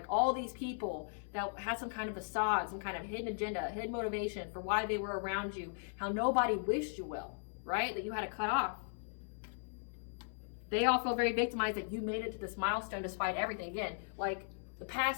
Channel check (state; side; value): silent; right; 53 dB below the other